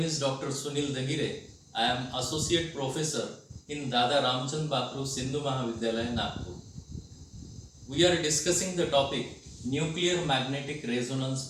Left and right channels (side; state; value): both; identical; correlation 1.00